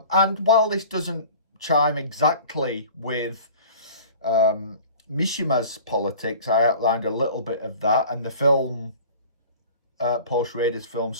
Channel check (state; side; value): inverted; both; correlation -0.43